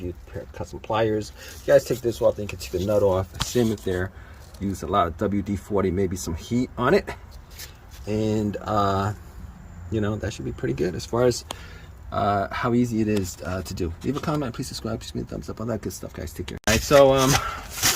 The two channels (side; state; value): both; identical; correlation 1.00